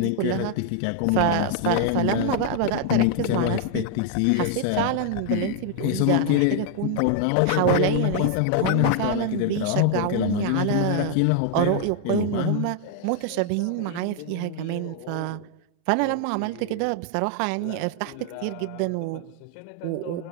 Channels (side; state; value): both; different; correlation 0.00